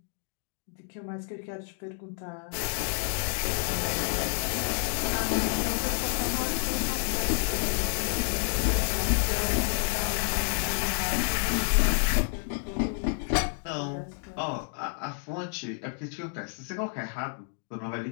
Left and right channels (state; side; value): silent; right; 57 dB below the other